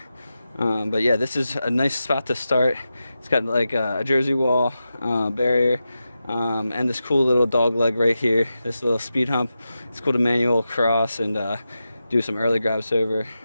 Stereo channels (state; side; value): inverted; both; correlation -0.91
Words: But yeah, this is a nice spot to start. It's got like a jersey wall, barrier, and this cool little dog leg right here, this little speed hump. It's cool to manual cross and do some early grabs over.